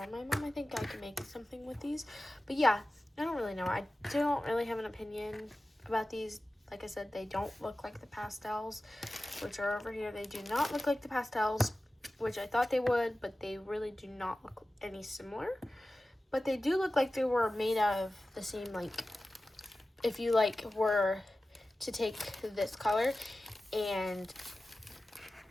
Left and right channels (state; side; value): normal; both; correlation 0.95